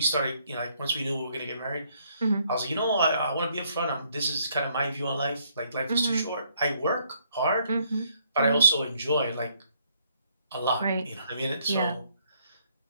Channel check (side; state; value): both; inverted; correlation -0.69